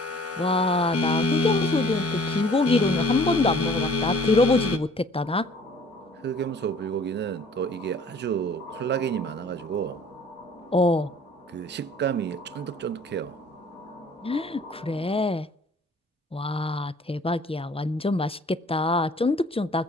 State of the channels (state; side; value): normal; both; correlation 0.52